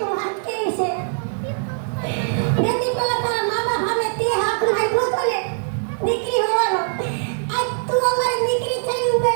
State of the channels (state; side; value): silent; left; digital silence